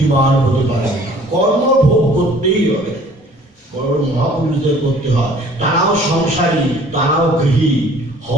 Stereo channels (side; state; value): both; normal; correlation 0.53